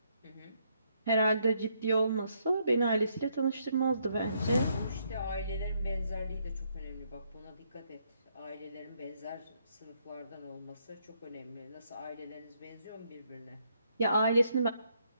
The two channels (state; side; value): inverted; both; correlation -0.74